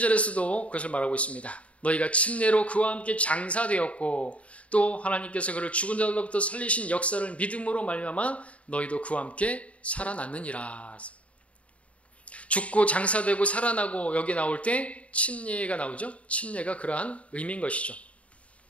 그것을 말하고 있습니다. 너희가 침례로 그와 함께 장사되었고 또 하나님께서 그를 죽은 자들로부터 살리신 역사를 믿음으로 말미암아 너희도 그와 함께 살아났느니라. 죽고 장사되고 살아나고 여기 나올 때 침례가 나오죠. 침례가 그러한 의미인 것이죠.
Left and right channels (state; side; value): late; right; 0.065 ms